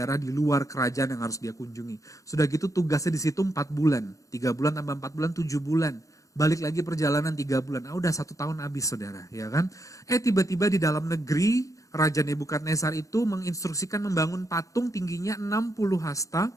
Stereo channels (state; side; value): late; right; 0.16 ms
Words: di luar kerajaan yang harus dia kunjungi. Sudah gitu tugasnya di situ 4 bulan. 3 bulan tambah 4 bulan, 7 bulan. Balik lagi perjalanan 3 bulan. Udah 1 tahun habis, saudara, ya kan? Tiba-tiba di dalam negeri, Raja Nebukadnezar itu menginstruksikan membangun patung tingginya 60 hasta,